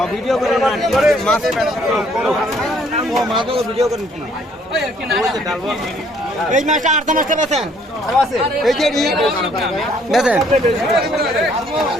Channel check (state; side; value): normal; both; correlation 0.63